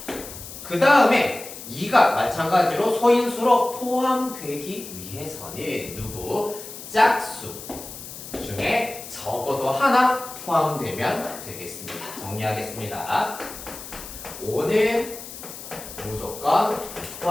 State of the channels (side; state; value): left; noise; hiss, 12 dB below the sound